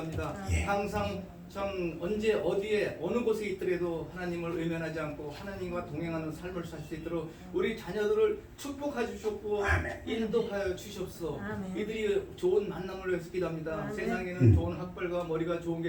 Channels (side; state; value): both; identical; correlation 1.00